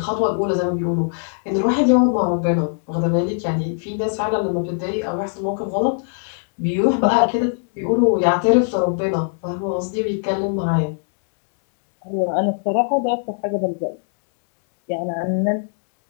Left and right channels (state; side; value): silent; right; 65 dB below the other